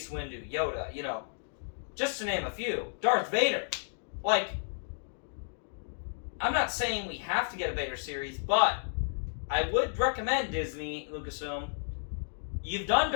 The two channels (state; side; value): silent; right; digital silence